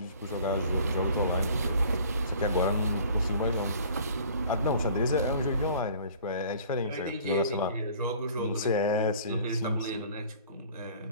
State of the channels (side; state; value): both; inverted; correlation -0.49